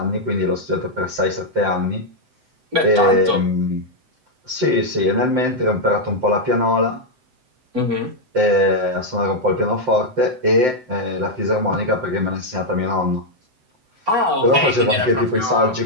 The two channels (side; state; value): left; late; 7.8 ms